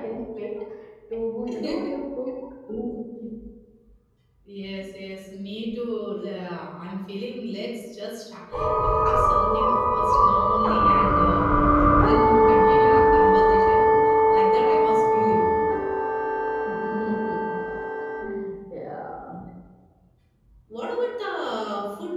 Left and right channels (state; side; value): identical; both; correlation 1.00